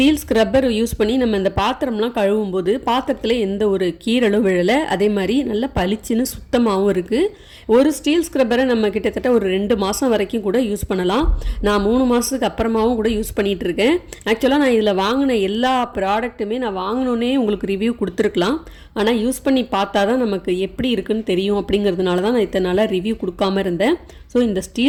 ஸ்க்ரப்பர் யூஸ் பண்ணி நம்ம இந்த பாத்திரம்லாம் கழுவும் போது பாத்திரத்தில் எந்த ஒரு கீரலும் விழலை. அதே மாதிரி நல்லா பளிச்சுன்னு சுத்தமாகவும் இருக்குது. ஒரு ஸ்டீல் ஸ்க்ரப்பரை நம்ம கிட்டத்தட்ட ஒரு 2 மாதம் வரைக்கும் கூட யூஸ் பண்ணலாம். நான் 3 மாதத்துக்கு அப்புறமாவும் கூட யூஸ் பண்ணிகிட்டு இருக்கேன். ஆக்சுவலாக நான் இதில் வாங்கின எல்லா ப்ராடக்ட்டுமே நான் வாங்கினோன்னே உங்களுக்கு ரிவ்யூ கொடுத்துருக்கலாம். ஆனால் யூஸ் பண்ணி பார்த்தா தான் நமக்கு எப்படி இருக்குன்னு தெரியும். அப்படிங்கிறதுனால தான் நான் இத்தனை நாளாக ரிவ்யூ கொடுக்காம இருந்தேன். ஸோ இந்த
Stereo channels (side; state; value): both; identical; correlation 1.00